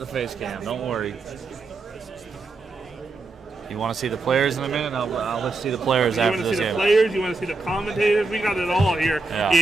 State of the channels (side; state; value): left; quieter; 3.5 dB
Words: face cam. Don't worry. You want to see the players in a minute? I'll let you see the players You after want to this see the game. players? You want to see the commentators? We got it all here Yeah.